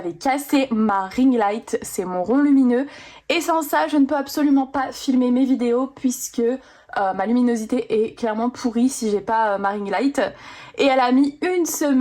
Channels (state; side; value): identical; both; correlation 1.00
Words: cassé ma ring light, c'est mon rond lumineux. Et sans ça, je ne peux absolument pas filmer mes vidéos puisque ma luminosité est clairement pourrie si j'ai pas ma ring light. Et elle a mis une